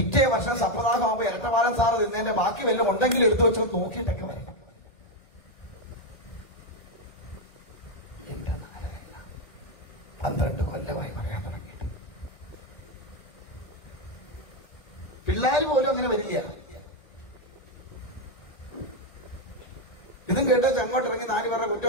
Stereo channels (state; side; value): late; right; 1.4 ms